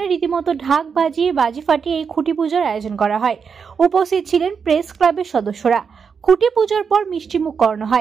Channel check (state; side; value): quieter; left; 6.1 dB